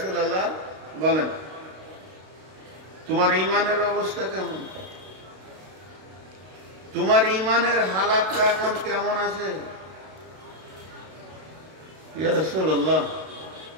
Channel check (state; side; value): late; left; 32 ms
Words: বলেন তোমার ঈমানের অবস্থা কেমন, তোমার ঈমানের হালাতটা এখন কেমন আছে? ইয়া রাসূলুল্লাহ